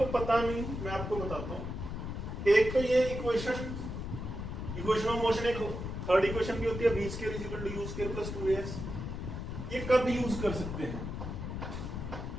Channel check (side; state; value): left; noise; rumble, 5 dB below the sound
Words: पता नहीं, मैं आपको बताता हूं। एक तो ये इक्वेशन ऑफ मोशन, एक थर्ड इक्वेशन भी होती है, v square is equal to u square plus 2as। ये कब यूज कर सकते हैं,